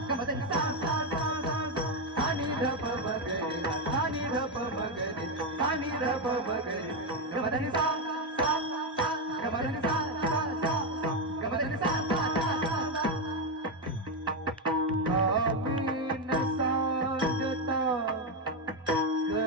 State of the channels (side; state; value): both; normal; correlation 0.06